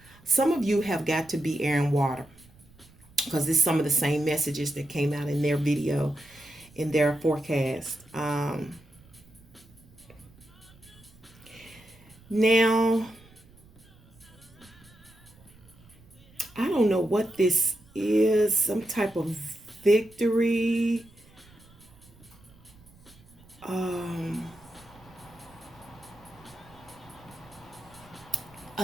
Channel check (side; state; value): right; noise; rumble, 26 dB below the sound